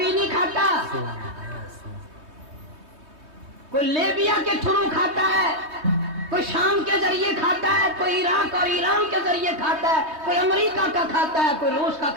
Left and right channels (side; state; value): left; late; 3.2 ms